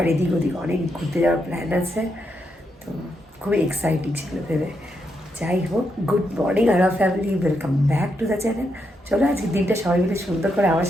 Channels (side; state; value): both; normal; correlation 0.81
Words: এদিক ওদিক অনেক ঘুরতে যাওয়ার প্ল্যান আছে। তো খুবই এক্সাইটিং ছিল ভেবে। যাই হোক, good morning our family, welcome back to the channel. চলো আজকে দিনটা সবাই মিলে সুন্দর করে আমার